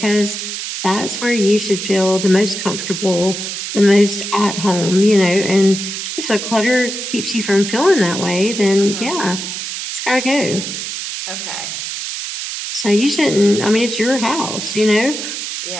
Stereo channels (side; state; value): right; noise; hiss, 6 dB below the sound